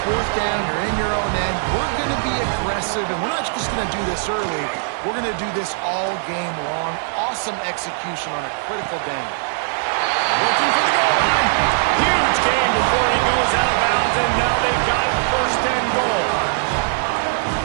fourth down, you're in your own end. We're going to be aggressive, and we're not just going to do this early. We're going to do this all game long. Awesome execution on a critical down. Looking for the goal line. Huge game before he goes out of bounds, and now they've got it first and goal.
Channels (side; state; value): left; silent; 65 dB below the other